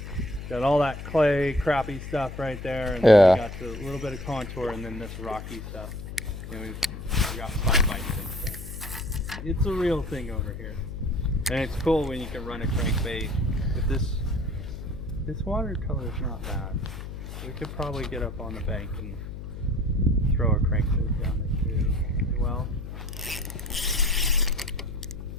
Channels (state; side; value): noise; left; hum, 9 dB below the sound